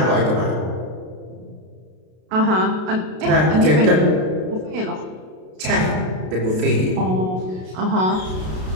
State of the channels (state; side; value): late; left; 33 ms